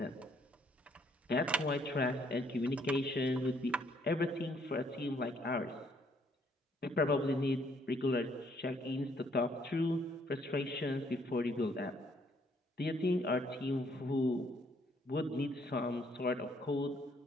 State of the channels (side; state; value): both; normal; correlation 0.67